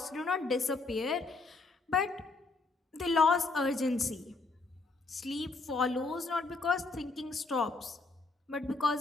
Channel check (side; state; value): right; quieter; 3.7 dB